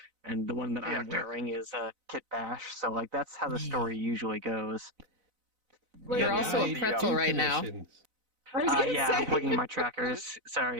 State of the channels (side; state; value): left; late; 4.0 ms